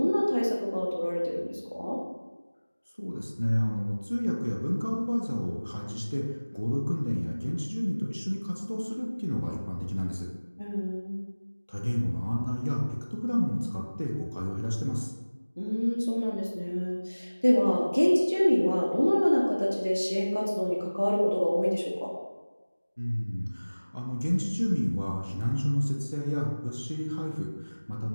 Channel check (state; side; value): inverted; both; correlation -1.00